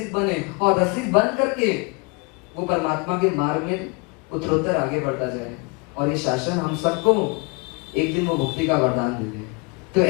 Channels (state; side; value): quieter; right; 29.1 dB